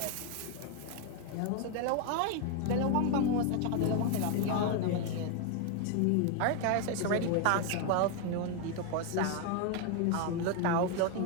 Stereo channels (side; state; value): both; different; correlation 0.01